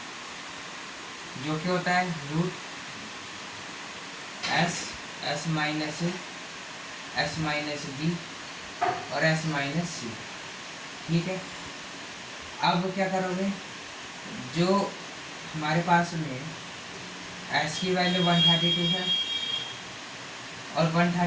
जो कि होता है रूट एस माइनस बी और एस माइनस सी, ठीक है। अब क्या करोगे, जो हमारे पास में एस की वैल्यू 132 है और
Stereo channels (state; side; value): identical; both; correlation 1.00